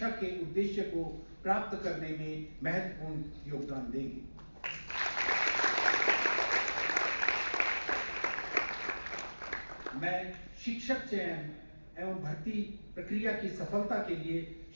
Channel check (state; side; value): inverted; both; correlation -1.00